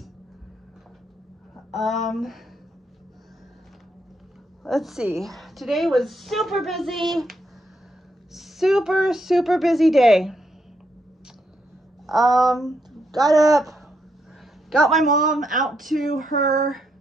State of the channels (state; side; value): normal; both; correlation 0.78